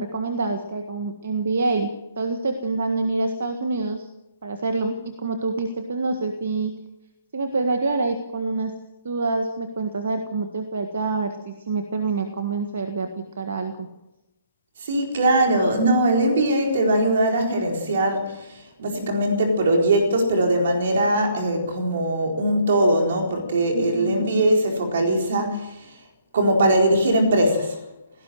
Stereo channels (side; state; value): both; inverted; correlation -0.67